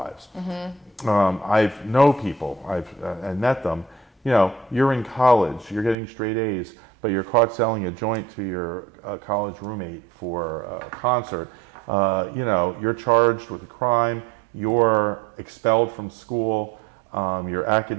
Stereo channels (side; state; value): left; drops out; at 6.0 s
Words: I know people. I've met them. You're in college. You're getting straight A's, but you're caught selling a joint to your college roommate for a concert. You're charged with a crime. You're expelled from school. Your